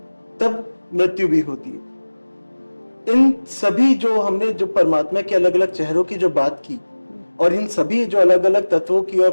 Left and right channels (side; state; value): both; inverted; correlation -1.00